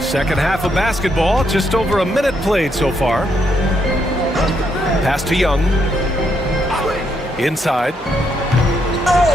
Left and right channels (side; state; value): both; normal; correlation 0.76